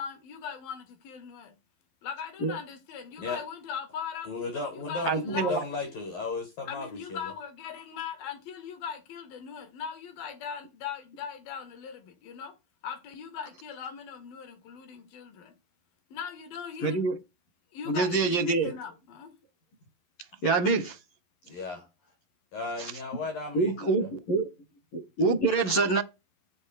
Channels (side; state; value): right; late; 11 ms